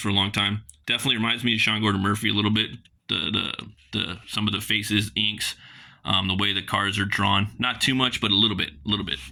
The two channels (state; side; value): identical; both; correlation 1.00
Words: a long time. Definitely reminds me of Sean Gordon Murphy a little bit. The some of the faces, inks, the way the cards are drawn. Not too much, but a little bit.